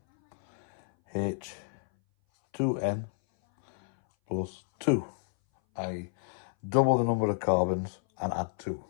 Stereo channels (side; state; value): right; silent; 58 dB below the other